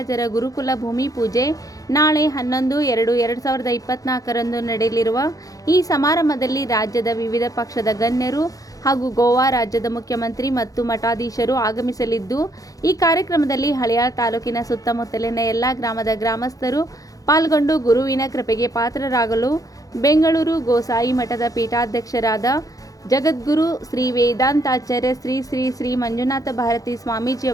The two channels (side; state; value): right; late; 0.17 ms